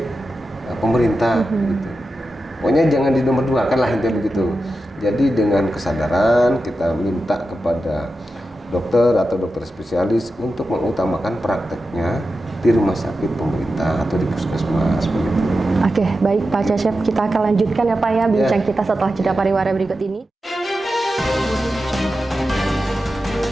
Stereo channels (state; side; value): normal; both; correlation 0.91